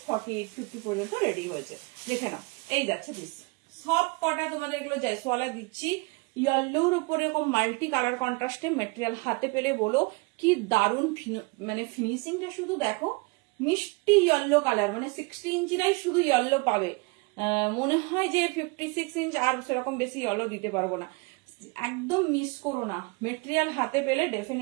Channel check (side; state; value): left; quieter; 28.0 dB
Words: 48-50 পর্যন্ত রেডি হয়েছে। দেখে নাও, এই যাচ্ছে পিস। সব কটা তোমাদের এগুলো জয়সওয়ালা দিচ্ছি, ইয়েলোর উপরে এরকম মাল্টি কালার কন্ট্রাস্টে মেটেরিয়াল। হাতে পেলে বলো কি দারুণ, মানে ফিনিশিংটা শুধু দেখো, মিষ্টি ইয়েলো কালার, মানে 60 ইঞ্চিরাই শুধু ইয়েলো পাবে। মনে হয় যে 56 ইঞ্চ আর সেরকম বেশি ইয়েলো দিতে পারবো না, একদম মিস করো না। মেটেরিয়াল হাতে পেলে